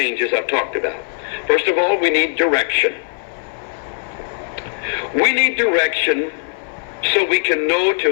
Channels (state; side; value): silent; right; 58 dB below the other